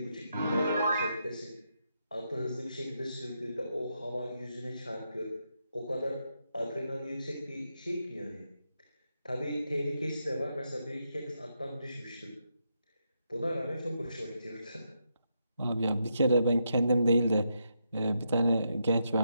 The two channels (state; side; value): inverted; both; correlation -0.82